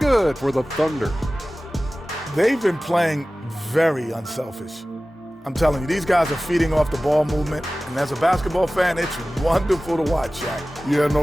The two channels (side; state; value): both; normal; correlation 0.97